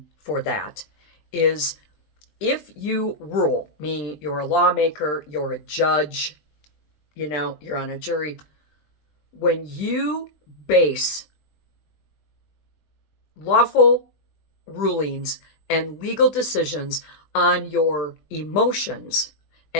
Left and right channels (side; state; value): right; late; 20 ms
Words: for that is if you rule, meaning you're a lawmaker, you're a judge, you're on a jury, when you base lawful rulings and legal decisions on your emotions